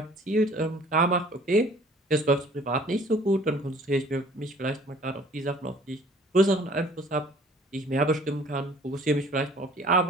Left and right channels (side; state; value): both; normal; correlation 0.53